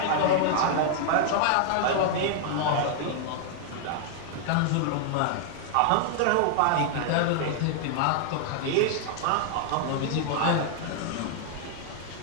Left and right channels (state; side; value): different; both; correlation 0.00